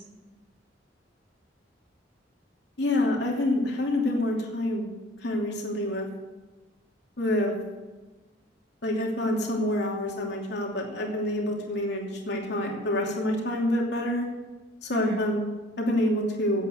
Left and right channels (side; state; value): both; normal; correlation 0.49